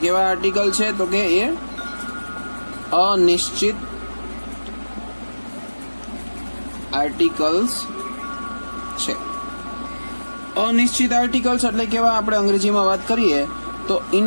કેવા આર્ટિકલ છે? તો કે એ અનિશ્ચિત આર્ટિકલ્સ છે. અનિશ્ચિત આર્ટિકલ્સ એટલે કેવા? આપણે અંગ્રેજીમાં વાત કરીએ તો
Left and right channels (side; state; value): both; inverted; correlation -1.00